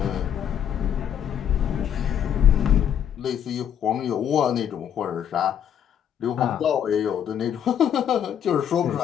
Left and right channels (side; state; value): right; quieter; 9.1 dB